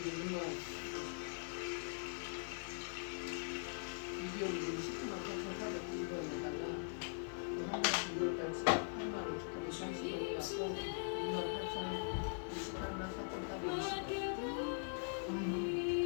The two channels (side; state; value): right; silent; digital silence